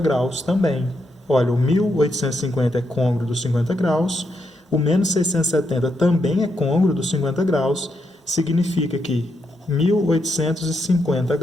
graus também. Olha, o 1850 é côngruo dos 50 graus, o menos 670 também é côngruo dos 50 graus, significa que 1850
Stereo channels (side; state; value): both; normal; correlation 0.81